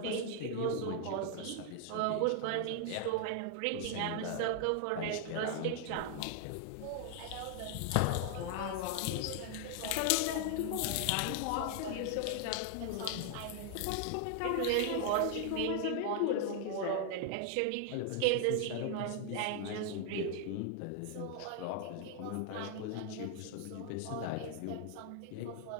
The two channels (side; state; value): both; different; correlation 0.00